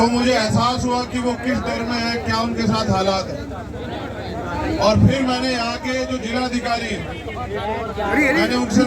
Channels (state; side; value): identical; both; correlation 1.00